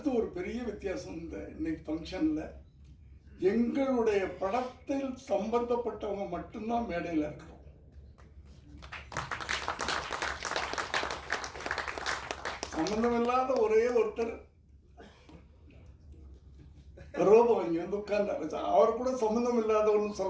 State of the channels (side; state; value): both; identical; correlation 1.00